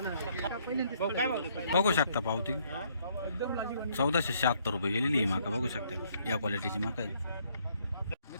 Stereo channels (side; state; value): both; inverted; correlation -0.67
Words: बघू शकता पावती 1476 रुपये गेलेली ही मका बघू शकता या क्वालिटीची मका आहे.